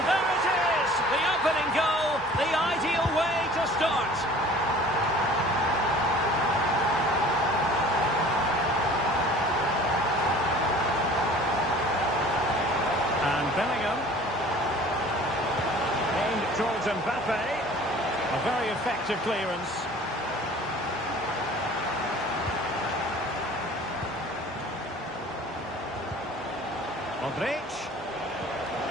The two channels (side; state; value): both; normal; correlation 0.47